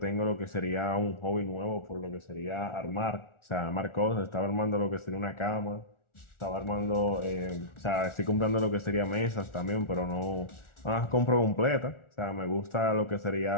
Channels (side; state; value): right; late; 1.4 ms